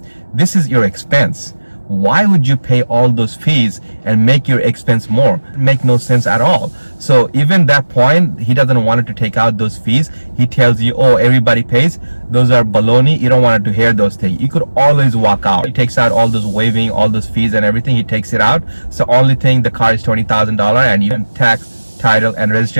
This is your expense. Why would you pay all those fees and make your expense more? It make no sense at all. So even that point, he doesn't want it to take out those fees. He tells you, oh, everybody pays. Those are baloney. You don't want it to hear those things. You could always walk out. He takes out all those waiving, all those fees and everything. He takes it out. So only thing, the car is $20,000 and you can tax, title, and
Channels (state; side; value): inverted; both; correlation -1.00